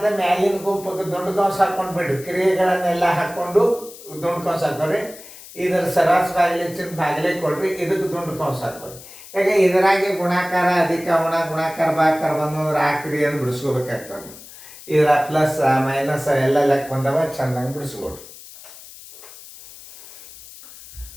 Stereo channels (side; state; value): left; noise; hiss, 18 dB below the sound